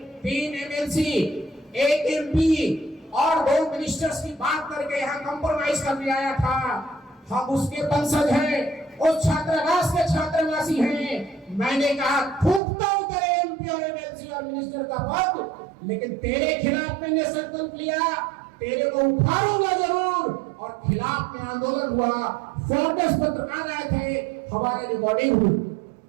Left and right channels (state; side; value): drops out; left; at 12.6 s